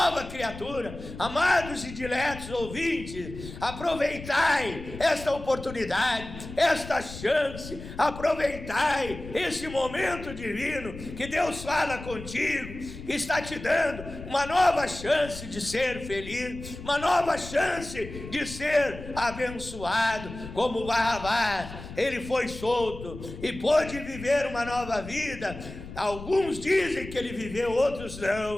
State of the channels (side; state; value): left; noise; rumble, 12 dB below the sound